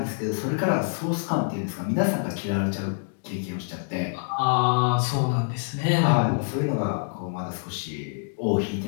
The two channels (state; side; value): silent; right; digital silence